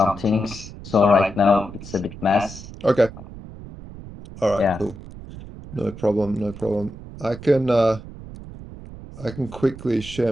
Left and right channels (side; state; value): right; noise; rumble, 14 dB below the sound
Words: things. So right now it's a bit mess. Okay. All right, Yeah, cool. No problem, no problem. I can quickly share